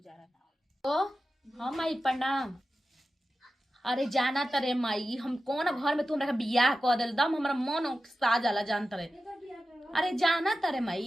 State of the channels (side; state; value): both; normal; correlation 0.93